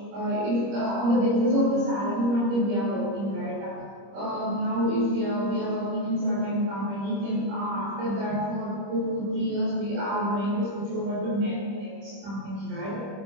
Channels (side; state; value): left; late; 25 ms